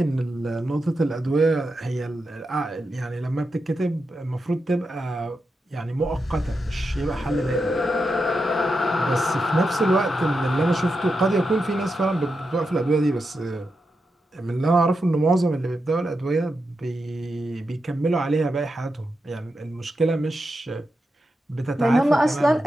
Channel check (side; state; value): both; normal; correlation 0.87